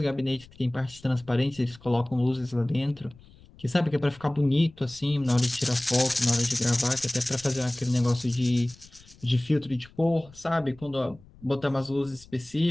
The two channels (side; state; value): left; noise; rumble, 24 dB below the sound